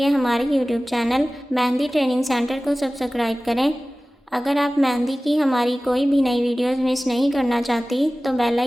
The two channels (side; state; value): both; normal; correlation 0.97